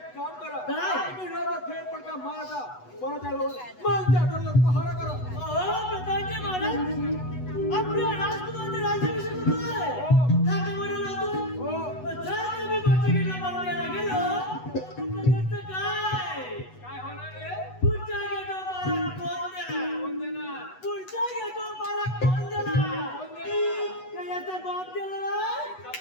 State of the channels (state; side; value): late; right; 8.1 ms